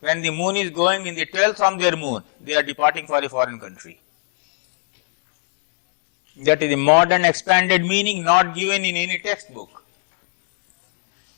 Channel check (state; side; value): silent; right; digital silence